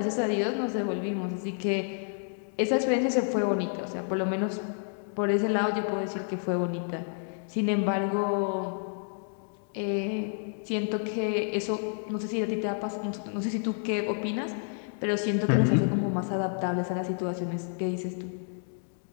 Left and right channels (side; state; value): right; silent; 58 dB below the other